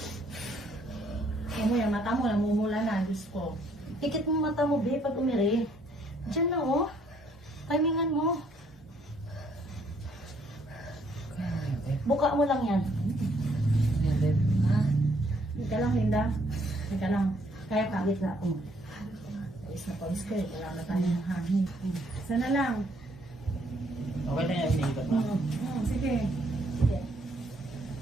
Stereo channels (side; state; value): both; normal; correlation 0.67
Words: Ano yan, mata mo, namumula na. Diyos ko. Pikit mo mata mo, be, pag umiri. Diyan na, oh. Timingan mo. Buka mo lang yan. Hindi ka lang, Linda. Hindi ka lang. Kaya ka. Pikit na ako. Pawis na pawis ka eh. Wala na tayo ng hangin. Isa na lang. Okay na yan, iniibat na. Sige. Sige.